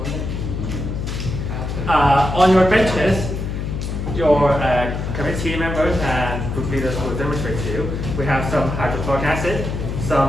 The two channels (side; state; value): left; noise; hum, 4 dB below the sound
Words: On your benches, your committee members and group leaders will demonstrate to you. We have some hydrochloric acid,